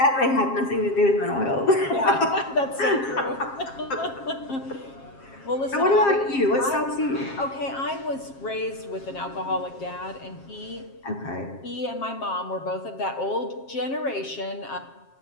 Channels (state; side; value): late; right; 7.4 ms